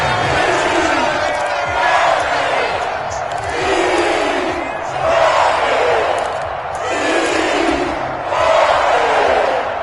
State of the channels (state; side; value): identical; both; correlation 1.00